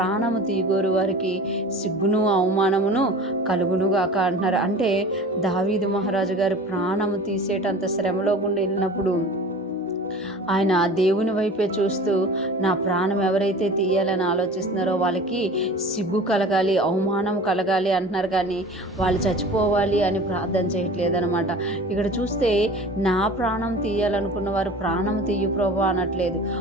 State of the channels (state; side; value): normal; both; correlation 0.40